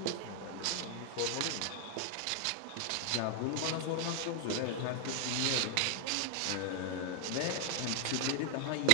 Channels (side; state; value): both; different; correlation 0.00